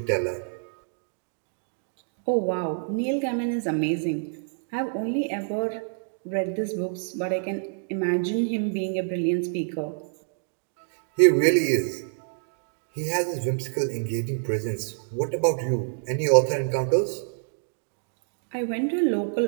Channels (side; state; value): left; silent; digital silence